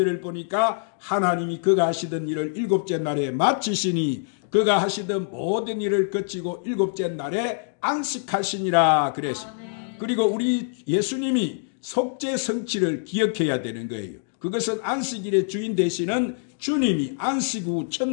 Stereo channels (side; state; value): right; silent; digital silence